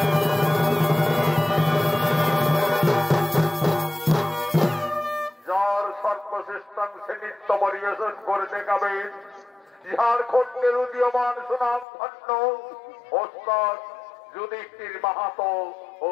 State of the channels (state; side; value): drops out; right; at 11.9 s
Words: যার সর্বশ্রেষ্ঠাংশে নৃত্য পরিবেশন করে দেখাবেন ঝাড়খণ্ডের উদীয়মান সুনাম ধন্য ওস্তাদ যুধিষ্ঠির মাহাতো ও